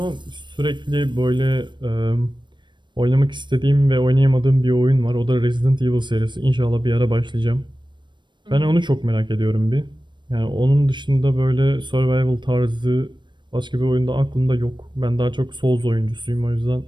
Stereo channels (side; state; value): left; late; 0.22 ms